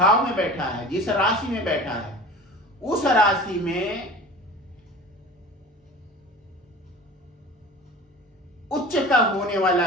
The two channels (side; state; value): both; normal; correlation 0.38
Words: में बैठा है, जिस राशि में बैठा है, उस राशि में उच्च का होने